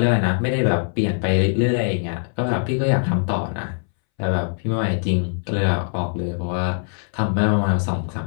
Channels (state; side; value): silent; right; 63 dB below the other